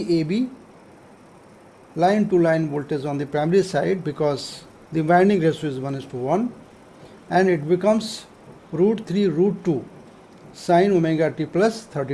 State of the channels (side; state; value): both; identical; correlation 1.00